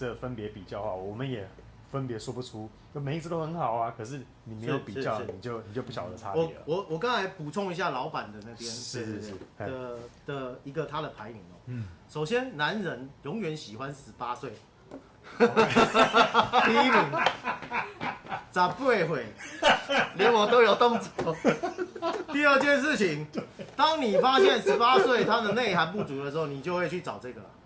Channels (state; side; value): identical; both; correlation 1.00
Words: 分别比较的话，我们也分别说不出，每一只都很好啊，可是你没有比较，你就不晓得差别了。我刚才补充一下老板的那边是的一个他的排名哦。首先男人永远喜欢18岁，第一名，18岁，连我都有动作。第二件事情，当你发现18岁它的内涵不足的时候，你就会去找这个。